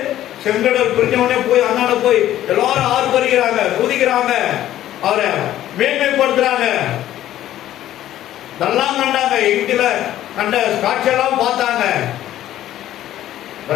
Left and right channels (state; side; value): quieter; right; 13.0 dB